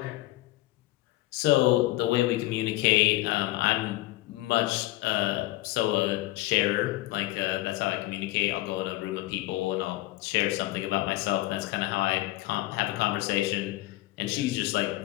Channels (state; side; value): quieter; right; 17.7 dB